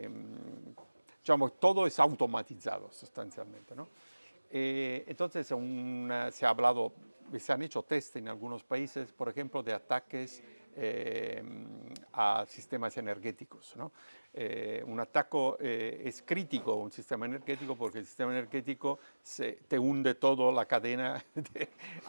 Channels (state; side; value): inverted; both; correlation -1.00